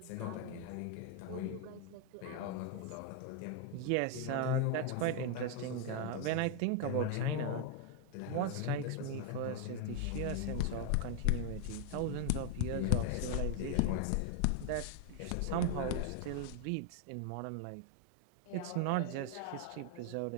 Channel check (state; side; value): different; both; correlation 0.00